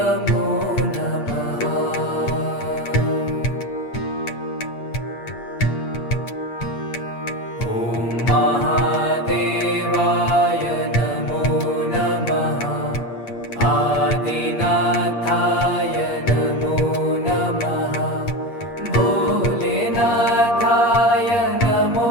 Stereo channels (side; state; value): right; late; 8.5 ms